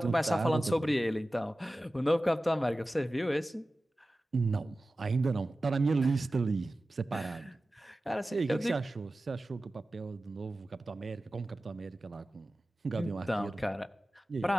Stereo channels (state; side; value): normal; both; correlation 0.95